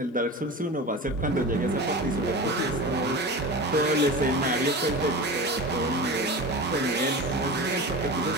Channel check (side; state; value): both; normal; correlation 0.30